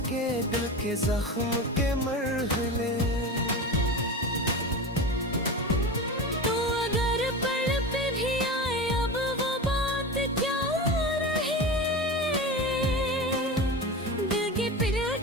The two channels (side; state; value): both; normal; correlation 0.27